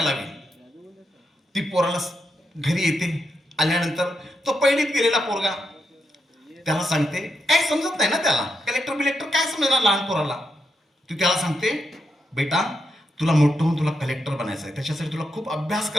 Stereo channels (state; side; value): normal; both; correlation 0.83